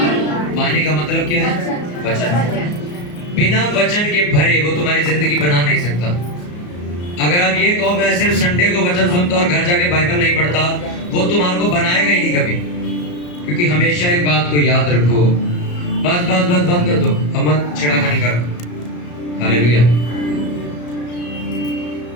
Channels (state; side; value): late; right; 34 ms